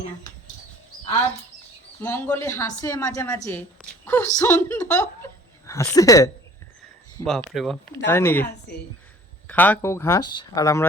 না। আর মঙ্গলে হাসে মাঝে মাঝে, খুব সুন্দর হাসে। বাপরে বাপ, তাই নাকি? হাসে। খাক ও ঘাস, আর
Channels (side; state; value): both; normal; correlation 0.50